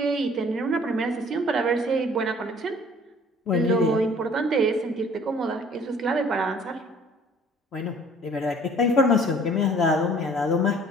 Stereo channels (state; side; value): normal; both; correlation 0.53